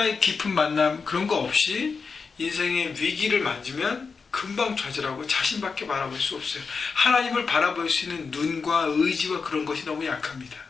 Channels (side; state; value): right; quieter; 5.0 dB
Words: 깊은 만남, 그런 거 없이 인생의 위기를 맞으면 금방 좌절하고 자신밖에 바라볼 수 없어요. 하나님을 바라볼 수 있는 눈과 의지와 그런 것이 너무 약합니다.